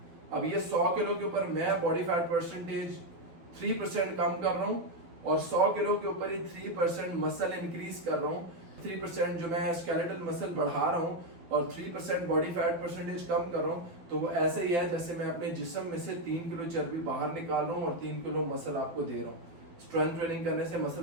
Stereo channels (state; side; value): late; left; 12 ms